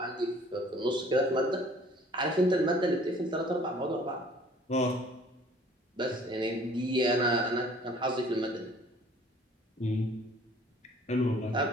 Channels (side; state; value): both; normal; correlation 0.54